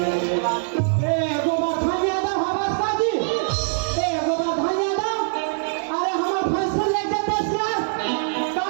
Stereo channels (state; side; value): silent; left; 64 dB below the other